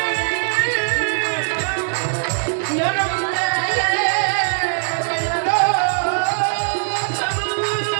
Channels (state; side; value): silent; left; 55 dB below the other